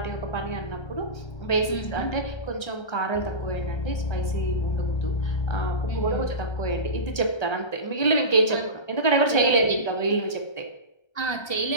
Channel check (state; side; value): late; right; 1.3 ms